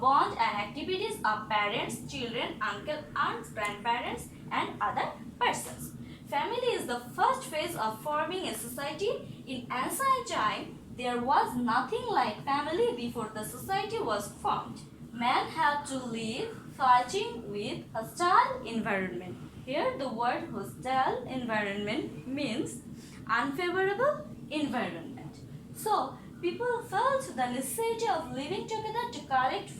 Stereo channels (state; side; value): identical; both; correlation 1.00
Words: bond and activities of parents, children, uncle, aunts, grandparents and other persons. Family is the first phase of forming a society. In ancient time, there was nothing like family before the society was formed. Man had to live fighting with hostile environment. Here the word hostile environment means unfavorable environment. So people felt the necessity of living together to collect